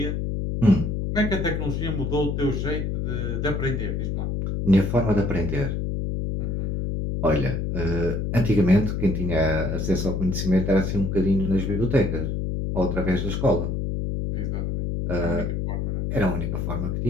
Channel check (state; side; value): noise; left; hum, 1 dB below the sound